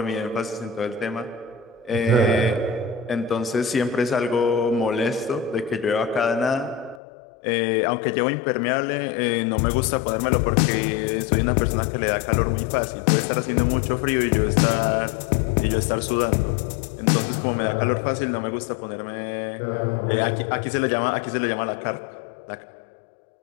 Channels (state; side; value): drops out; right; at 7.0 s